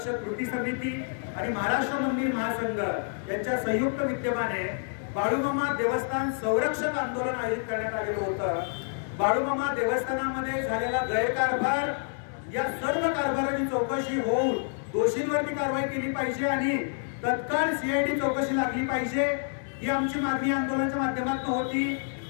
कृती समिती आणि महाराष्ट्र मंदिर महासंघ यांच्या संयुक्त विद्यमाने बाळूमामा देवस्थान संरक्षक आंदोलन आयोजित करण्यात आलेलं होतं। बाळूमामा देवस्थानामध्ये झालेला गैरकारभार, या सर्व कारभाराची चौकशी होऊन दोषींवरती कारवाई केली पाहिजे आणि तत्काळ सीआयडी चौकशी लागली पाहिजे, ही आमची मागणी आंदोलनाच्या माध्यमातून होती।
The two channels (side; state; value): right; silent; 59 dB below the other